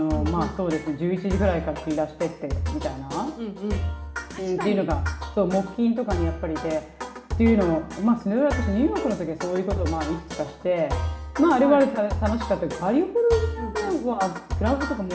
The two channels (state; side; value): identical; both; correlation 1.00